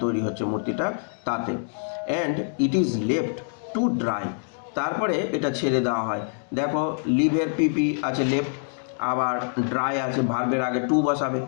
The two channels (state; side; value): silent; right; digital silence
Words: তৈরি হচ্ছে মূর্তিটা তাতে। And it is left to dry, তারপরে এটা ছেড়ে দেওয়া হয়। দেখো লিভের পিপি আছে লেফট, আবার ড্রাই আছে, ভার্বের আগে টু বসাবে,